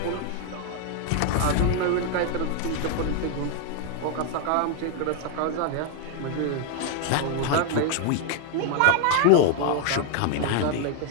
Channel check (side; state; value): both; different; correlation 0.00